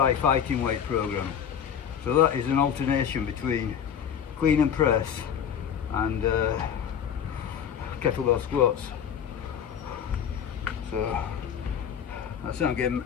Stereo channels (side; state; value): right; quieter; 8.3 dB